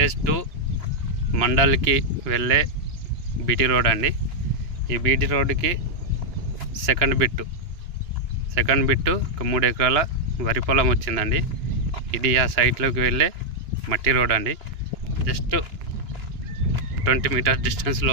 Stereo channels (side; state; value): left; late; 2.9 ms